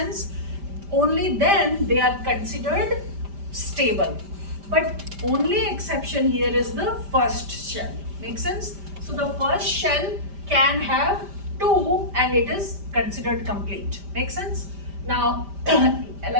Only then they are considered stable. But only exception here is the first shell. Make sense? So the first shell can have 2 and it is considered complete. Make sense? Now,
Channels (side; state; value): left; late; 5.1 ms